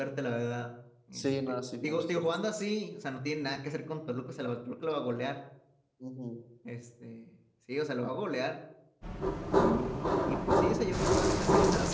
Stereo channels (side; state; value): both; identical; correlation 1.00